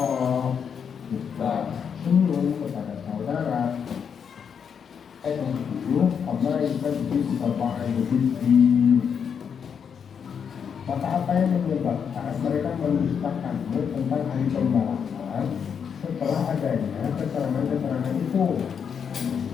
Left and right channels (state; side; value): quieter; right; 7.1 dB